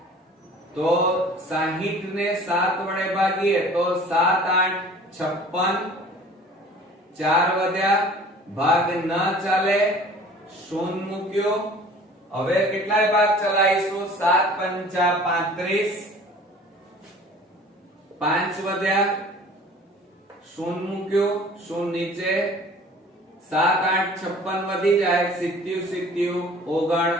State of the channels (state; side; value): normal; both; correlation 0.47